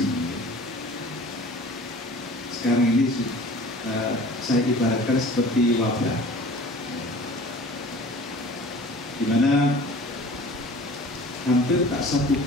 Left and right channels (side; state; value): both; normal; correlation 0.44